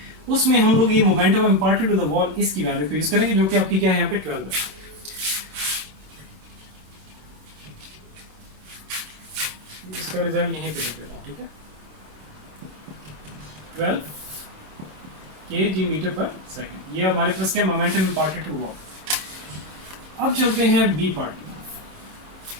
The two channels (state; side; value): late; left; 27 ms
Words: उसमें हम लोग ये momentum imparted to the wall इसकी वैल्यू को यूज करेंगे, जो कि आपकी क्या है यहाँ पे 12 है। इसका रिजल्ट यहीं पे लिख देता हूँ, ठीक है, 12 kg मीटर पर सेकेंड। ये हमारे पास क्या मोमेंटम इम्पार्टेड टू वॉल। अब चलते हैं बी पार्ट की।